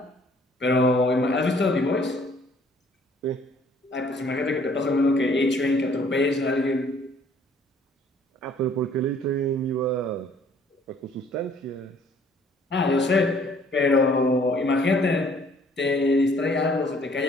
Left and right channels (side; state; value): both; normal; correlation 0.59